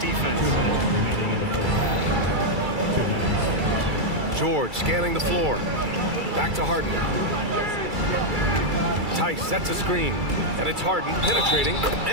George scanning the floor. Back to Harden. Tice sets a screen, and it's Harden penetrating,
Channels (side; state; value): left; late; 2.3 ms